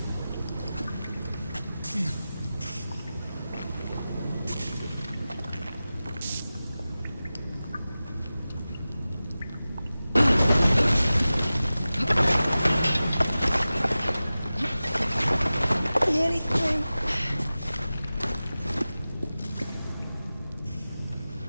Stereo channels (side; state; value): both; inverted; correlation -0.96